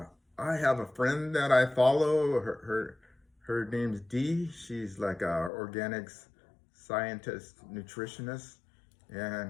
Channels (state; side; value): drops out; right; at 5.5 s